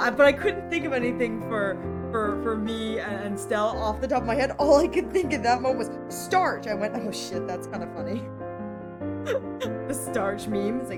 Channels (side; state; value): both; identical; correlation 1.00